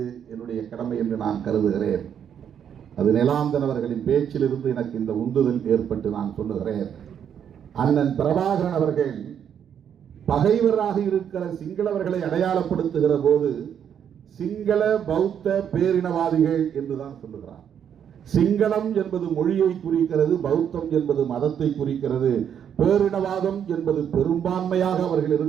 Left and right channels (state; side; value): quieter; left; 8.6 dB